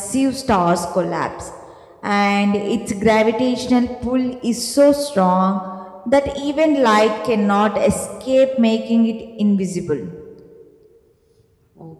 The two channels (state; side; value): identical; both; correlation 1.00